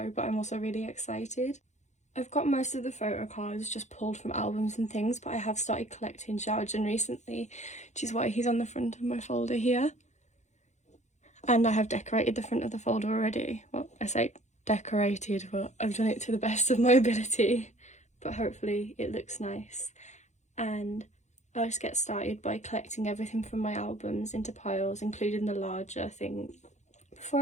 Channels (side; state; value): right; late; 0.34 ms